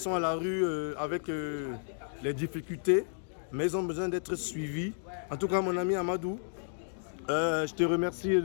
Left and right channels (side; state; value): right; silent; digital silence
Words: à la rue avec les difficultés, mais ils ont besoin d'être suivis. En tout cas, mon ami Amadou, Je te remercie